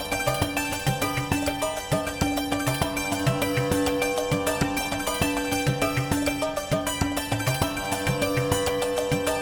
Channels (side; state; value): both; identical; correlation 1.00